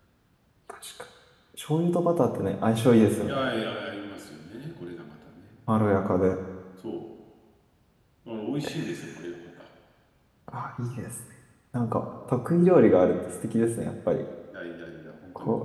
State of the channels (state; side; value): identical; both; correlation 1.00